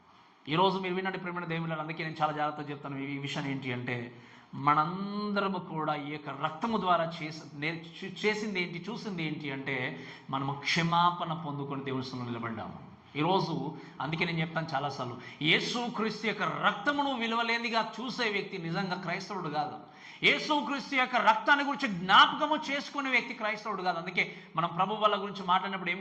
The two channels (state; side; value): identical; both; correlation 1.00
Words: ఈరోజు మీరు వినండి ప్రేమైన దేవుని, అందుకే నేను చాలా జాగ్రత్తగా చెప్తాను. ఈ విషయం ఏంటి అంటే, మనందరము కూడా ఈ యొక్క రక్తము ద్వారా చేసింది ఏంటి, చూసింది ఏంటి అంటే, మనము క్షమాపణ పొందుకొని దేవుని సన్నిధిలో నిలబడ్డాము. ఈరోజు అందుకే నేను చెప్తాను చాలాసార్లు, యేసుక్రీస్తు యొక్క రక్తమును విలువలేనిదిగా చూసే వ్యక్తి నిజంగా క్రైస్తవుడు కాదు. యేసుక్రీస్తు యొక్క రక్తాన్ని గురించి జ్ఞాపకము చేసుకునే వ్యక్తి క్రైస్తవుడు కాదు. అందుకే మనం ప్రభు వాళ్ళ గురించి మాట్లాడినప్పుడు ఏం